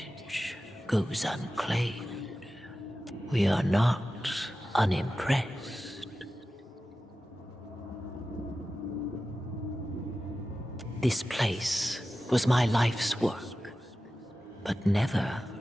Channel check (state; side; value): normal; both; correlation 0.94